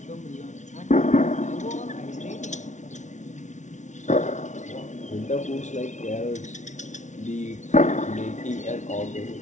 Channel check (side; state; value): right; late; 0.35 ms